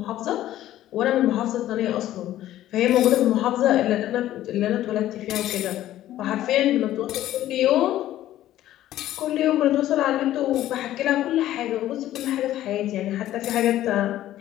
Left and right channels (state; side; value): quieter; right; 13.5 dB